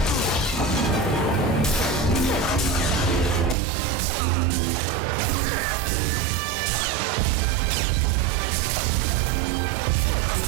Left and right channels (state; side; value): drops out; left; at 3.6 s